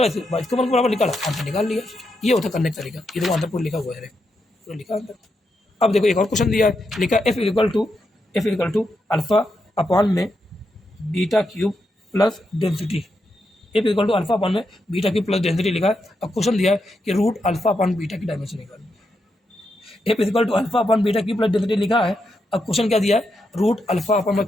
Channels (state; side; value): normal; both; correlation 0.83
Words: इसको वन बराबर निकाला, आंसर निकाल लिया। ये होता करने का तरीका, ये तो आंसर पूरा लिखा हुआ है, पूरा लिखा अंदर। अब देखो एक और क्वेश्चन दिया है, लिखा F equal to alpha upon में beta cube plus density, F equal to alpha upon में बीटा क्यूब प्लस डेंसिटी लिखा है। अब क्वेश्चन दिया है कि रूट अल्फा अपॉन बीटा की डायमेंशन निकालनी, F equal to alpha upon beta cube plus density लिखा है। अब क्वेश्चन क्या दिया है, रूट अल्फा अपॉन, मैं